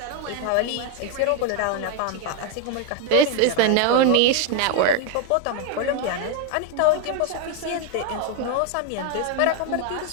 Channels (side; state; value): both; different; correlation 0.01